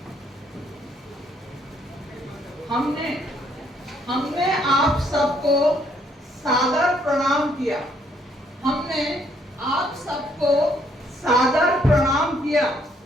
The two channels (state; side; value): normal; both; correlation 0.68